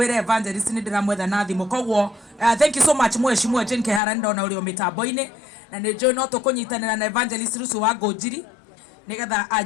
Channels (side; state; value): right; drops out; at 4.0 s